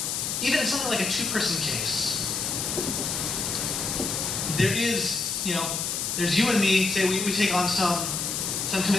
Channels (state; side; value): noise; left; hiss, 1 dB below the sound